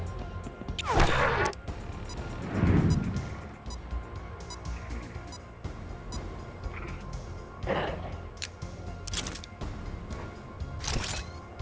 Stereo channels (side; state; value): both; identical; correlation 1.00